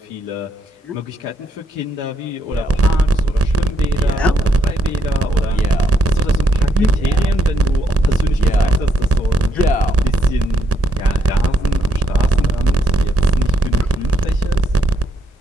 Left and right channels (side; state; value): both; normal; correlation 0.77